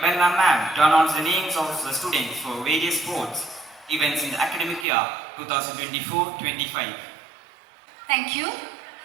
Berna ma'am to announce the names of the students for various sports events in the academic year 2024-25. Thank you.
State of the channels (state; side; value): drops out; left; at 4.9 s